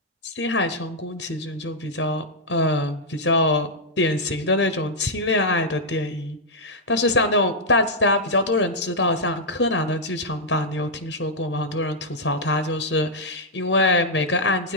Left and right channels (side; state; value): both; normal; correlation -0.05